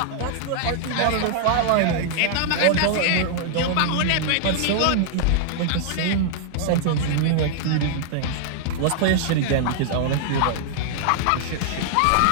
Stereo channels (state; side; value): different; both; correlation -0.01